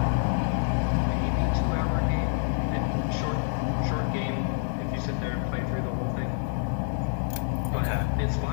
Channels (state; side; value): silent; right; digital silence